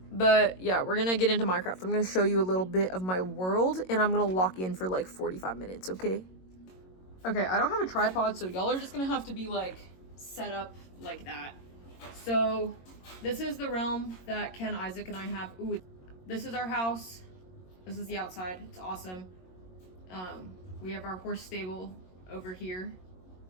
yeah, we're gonna get into Minecraft. I'm gonna show you a little bit of my world, and I'm gonna lock in for like 45 minutes, okay? Okay, I don't have a tripod, so y'all are just gonna have to be like set up like that. So this is the realm that Ken, Isaac, and I have. Ooh, this is our house. This is the outside. It's awesome. We have our horse stable over here.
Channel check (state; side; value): late; right; 22 ms